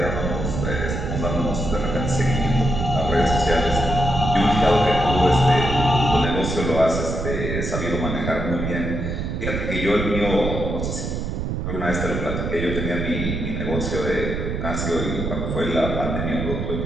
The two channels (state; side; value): noise; right; rumble, 3 dB below the sound